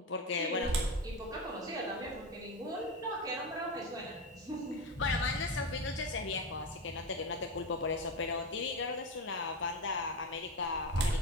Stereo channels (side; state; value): both; normal; correlation 0.19